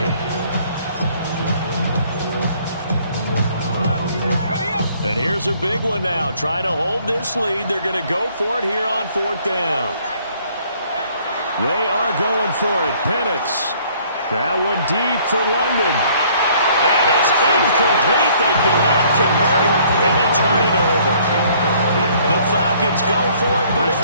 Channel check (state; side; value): inverted; both; correlation -0.60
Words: And here's a big one now. Trying to hold this lead. They're going to go for it here on 4th down. They are going for it. Penix. That one deep for London. And it's incomplete. They cannot convert, and they turn it over. The Falcons go for it, but it